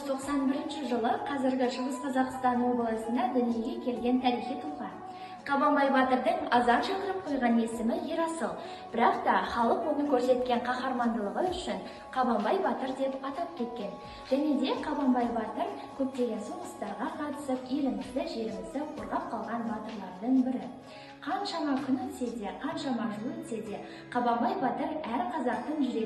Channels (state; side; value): identical; both; correlation 1.00